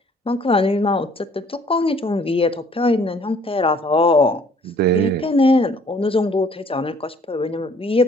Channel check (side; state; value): both; normal; correlation 0.58